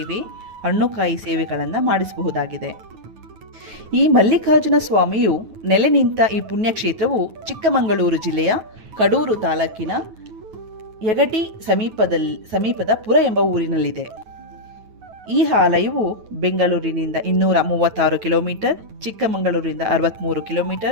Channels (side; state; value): left; late; 9.3 ms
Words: ಹಣ್ಣುಕಾಯಿ ಸೇವೆಗಳನ್ನು ಮಾಡಿಸಬಹುದಾಗಿದೆ. ಈ ಮಲ್ಲಿಕಾರ್ಜುನ ಸ್ವಾಮಿಯು ನೆಲೆ ನಿಂತ ಈ ಪುಣ್ಯಕ್ಷೇತ್ರವು ಚಿಕ್ಕಮಗಳೂರು ಜಿಲ್ಲೆಯ ಕಡೂರು ತಾಲೂಕಿನ ಯಗಟಿ ಸಮೀಪದ ಪುರ ಎಂಬ ಊರಿನಲ್ಲಿದೆ. ಈ ಆಲಯವು ಬೆಂಗಳೂರಿನಿಂದ 236 ಕಿಲೋಮೀಟರ್, ಚಿಕ್ಕಮಗಳೂರಿನಿಂದ 63